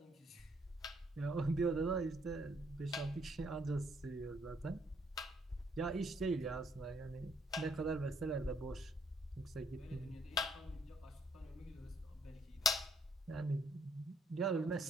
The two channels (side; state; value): both; normal; correlation 0.68